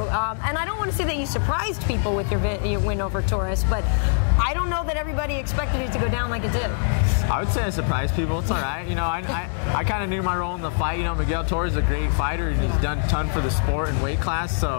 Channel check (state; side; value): silent; right; digital silence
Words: And I don't want to say that you surprised people with your win over Torres, but I don't know that everybody expected it to go down like it did. I would say I surprised people. It's all right. You know, I kind of knew my role in the fight. You know, Miguel Torres is a great fighter, and he's done a ton for the sport and weight class.